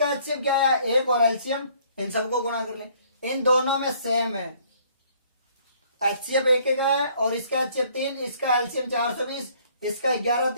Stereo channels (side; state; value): both; inverted; correlation -0.61